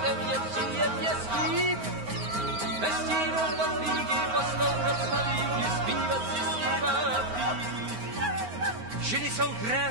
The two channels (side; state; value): left; late; 9.5 ms